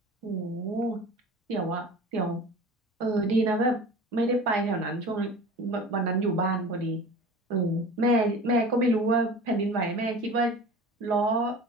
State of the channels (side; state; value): both; normal; correlation 0.38